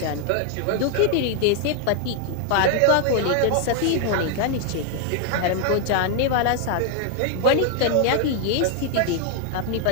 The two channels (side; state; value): both; different; correlation 0.00